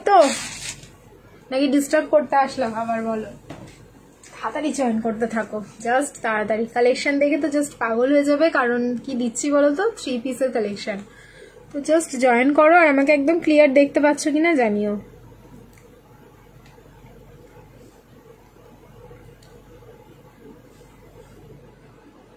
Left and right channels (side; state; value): both; identical; correlation 1.00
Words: তো, নাকি ডিস্টার্ব করতে আসলাম আবার বলো? তাড়াতাড়ি জয়েন করতে থাকো, জাস্ট তাড়াতাড়ি। কালেকশন দেখে তো জাস্ট পাগল হয়ে যাবে, কারণ কি দিচ্ছি বলো তো, 3 পিসের কালেকশন। তো জাস্ট জয়েন করো, আর আমাকে একদম ক্লিয়ার দেখতে পাচ্ছ কিনা জানিও।